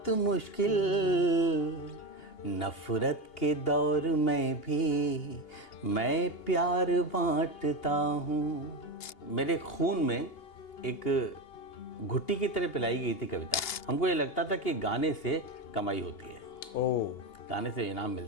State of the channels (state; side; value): late; right; 2.8 ms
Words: मुश्किल, नफरत के दौर में भी मैं प्यार बांटता हूँ। मेरे खून में एक घुट्टी की तरह पिलाई गई थी कविता। हमको ये लगता था कि गाने से कमाई होती है, गाने से इनाम